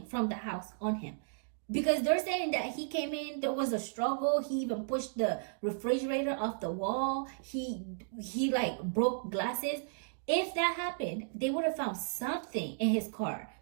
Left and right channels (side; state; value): left; silent; digital silence